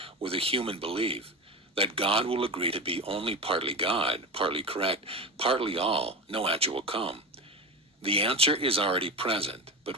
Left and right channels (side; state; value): both; normal; correlation 0.23